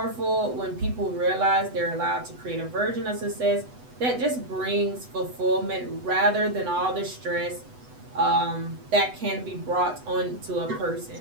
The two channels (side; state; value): left; late; 8.0 ms